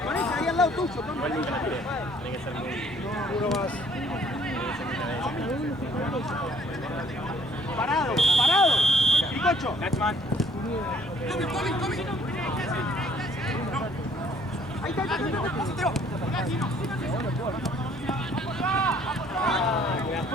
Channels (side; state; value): both; normal; correlation 0.60